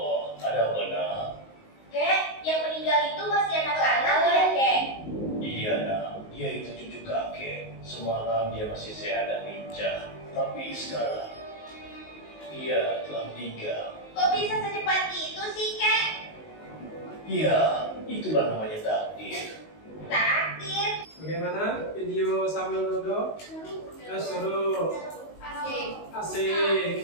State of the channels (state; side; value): late; right; 19 ms